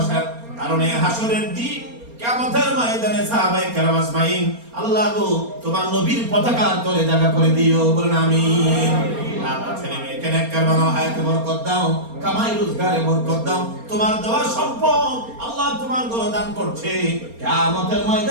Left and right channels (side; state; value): left; late; 4.3 ms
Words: কারণ এই হাসরের দিন কিয়ামতের ময়দানে সাহাবায়ে কেরাম আজমাইন আল্লাহ গো তোমার নবীর পতাকার তলে জায়গা করে দিও, বলুন আমিন। আমার ছেলে মেয়েকে নেককার বানাও, হায়াতে বরকত দাও, কামাই রোজগারে বরকত দাও। তোমার দেওয়া সম্পদ আল্লাহ তোমার ঘরে দান করছে, কিয়ামতের